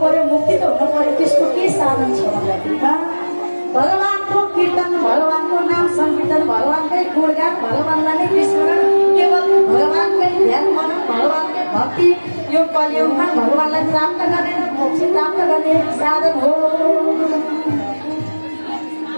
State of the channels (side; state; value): both; inverted; correlation -1.00